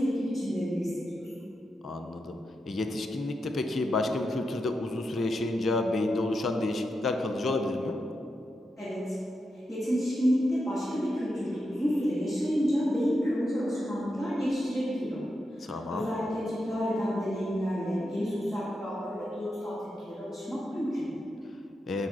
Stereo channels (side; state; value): both; normal; correlation 0.87